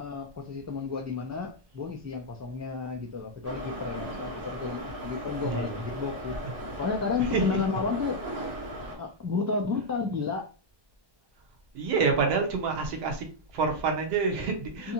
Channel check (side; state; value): left; late; 1.1 ms